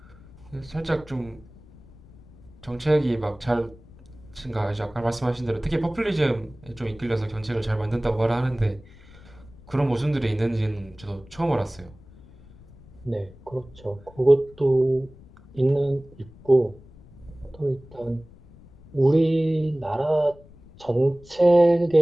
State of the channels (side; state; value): left; noise; rumble, 23 dB below the sound